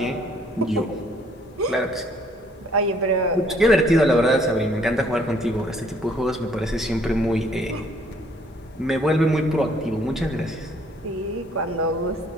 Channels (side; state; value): both; normal; correlation 0.63